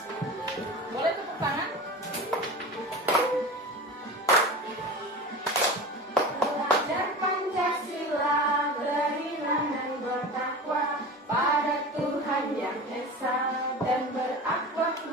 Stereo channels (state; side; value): normal; both; correlation 0.31